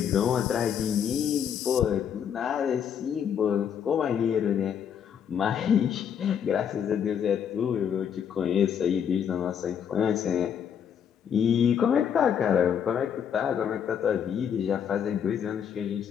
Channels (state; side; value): quieter; right; 8.2 dB